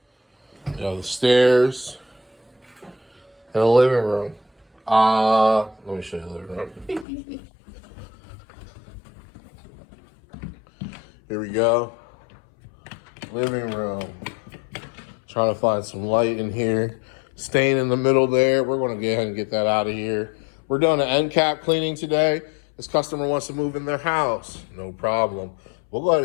the stairs, and a living room. Let me show you the living room. Here we go. Living room. Trying to find some light in here. Stain in the middle there. We're going to go ahead and get that out of here. We're doing an end cap cleaning today. This customer wants to move in their house. No problem. We'll go ahead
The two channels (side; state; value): right; drops out; at 7.1 s